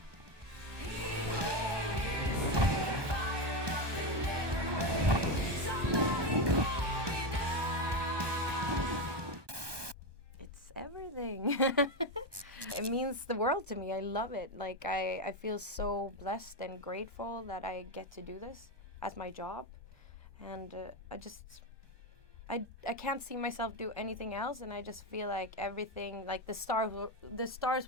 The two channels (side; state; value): left; late; 1.2 ms